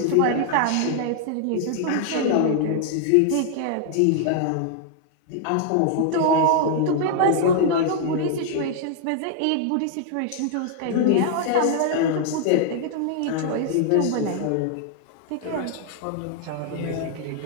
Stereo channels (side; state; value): both; different; correlation -0.01